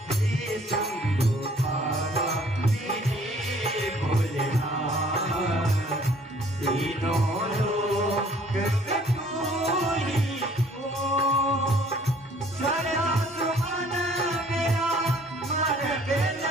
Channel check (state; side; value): normal; both; correlation 0.57